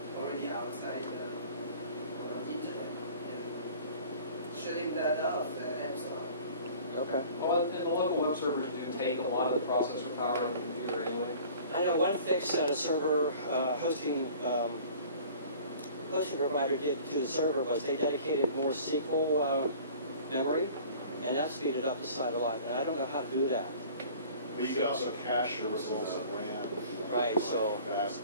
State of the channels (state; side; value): inverted; both; correlation -0.47